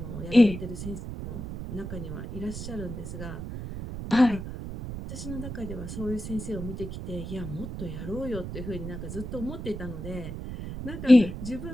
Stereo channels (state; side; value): noise; right; rumble, 7 dB below the sound